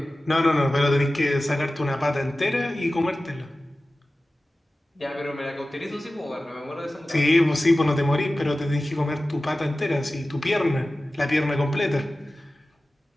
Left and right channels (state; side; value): normal; both; correlation 0.96